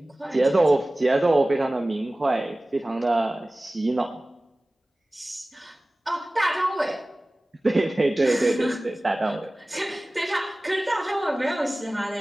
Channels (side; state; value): both; normal; correlation 0.98